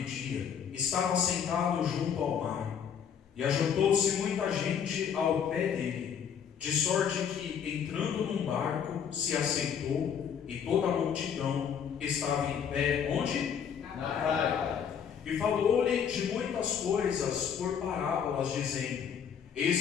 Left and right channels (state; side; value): quieter; right; 7.8 dB